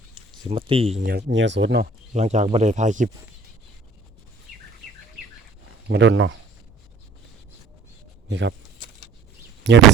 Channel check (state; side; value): quieter; left; 3.5 dB